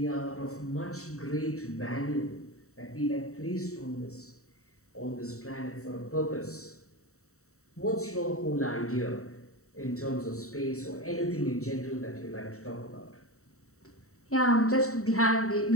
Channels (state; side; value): late; right; 0.64 ms